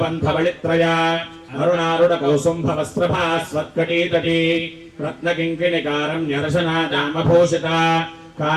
बलित्रया अरुणारुण कौसुंभ वस्त्रभास्वत्कटीतटी रत्नकिङ्किणिकारं न्यरशनादामभूषिता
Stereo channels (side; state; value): both; identical; correlation 1.00